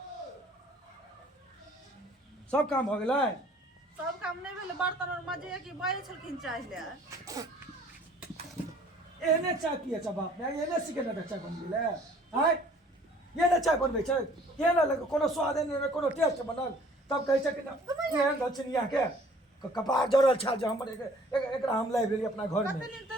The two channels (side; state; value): both; normal; correlation 0.54